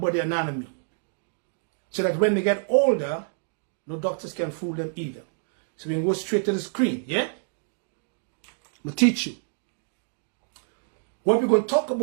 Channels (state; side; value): silent; left; digital silence